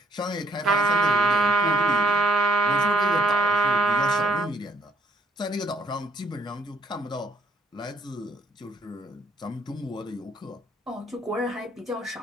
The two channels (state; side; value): normal; both; correlation 0.66